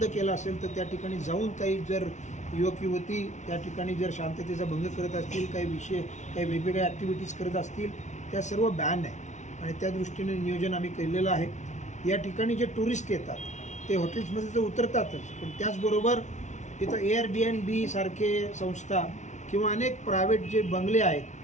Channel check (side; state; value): right; late; 0.35 ms